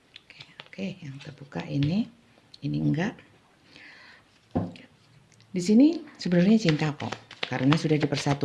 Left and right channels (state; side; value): identical; both; correlation 1.00